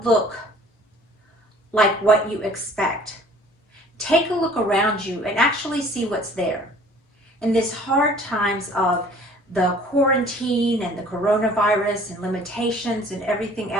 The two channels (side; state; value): both; normal; correlation 0.52